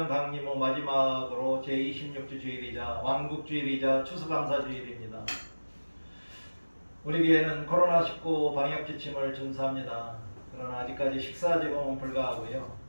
강림호 마지막으로 제26주 주일이자 왕국주일이자 추수감사주일입니다. 우리 교회는 코로나19 방역 지침을 준수합니다. 그러나 아직까지 식사 제공은 불가하고요.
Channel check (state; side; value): inverted; both; correlation -1.00